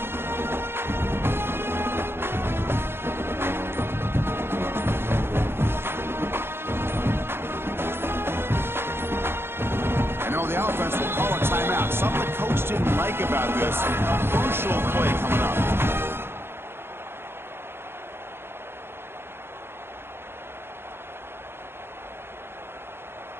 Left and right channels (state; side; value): late; left; 0.11 ms